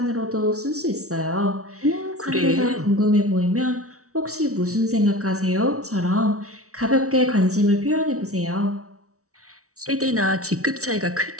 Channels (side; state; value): left; late; 0.65 ms